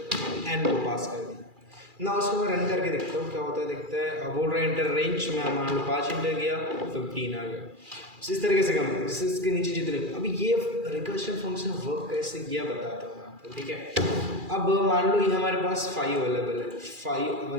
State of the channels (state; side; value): late; left; 2.4 ms